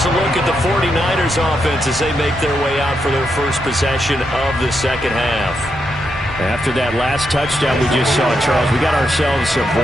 a look at the 49ers offense as they make their way out for their first possession of the second half. After that last touchdown we just saw, Charles, we got ourselves a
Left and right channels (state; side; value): normal; both; correlation 0.82